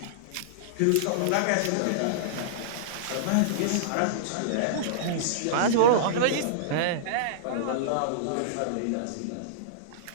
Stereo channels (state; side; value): different; both; correlation -0.02